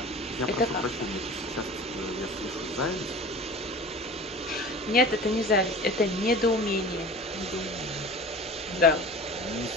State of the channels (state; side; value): normal; both; correlation 0.37